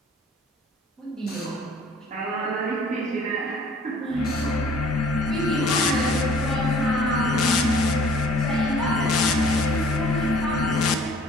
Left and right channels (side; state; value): both; normal; correlation 0.53